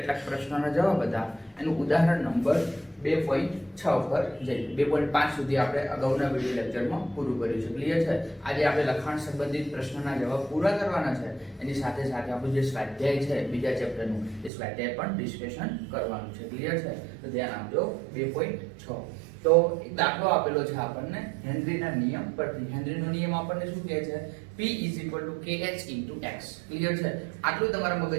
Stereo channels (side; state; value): left; drops out; at 14.5 s